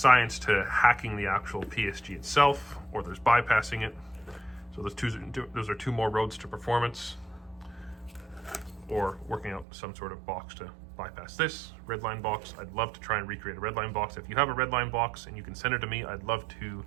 to hacking the actual PSG itself, or there's bypassing it. So those are two more roads to performance, or working out some sort of box to bypass this redline box. I'd love to try and recreate a redline box. If you have a redline box and you can send it to me, I'd love to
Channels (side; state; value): left; drops out; at 9.7 s